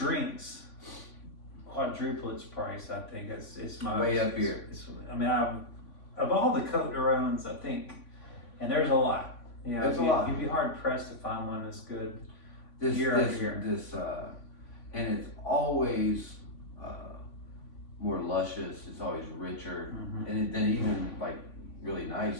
quadruple its price. I think it's my Way up here. Of all the Côte de Rhônes, I think, and there's a lot. There's a lot. You'd be hard pressed to find one that's good. This Year after year. And it's always more luscious. It's always richer, and then even like really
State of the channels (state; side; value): late; right; 3.5 ms